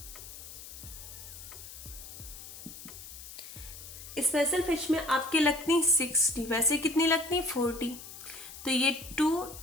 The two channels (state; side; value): noise; left; hiss, 13 dB below the sound